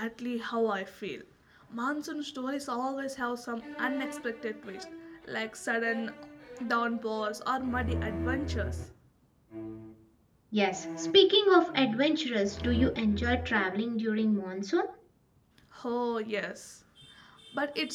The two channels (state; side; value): identical; both; correlation 1.00